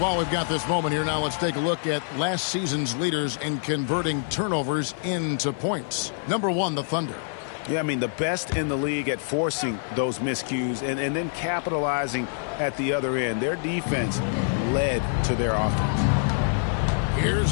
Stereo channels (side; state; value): right; silent; 58 dB below the other